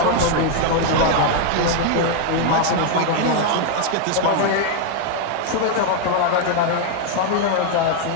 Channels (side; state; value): both; different; correlation 0.00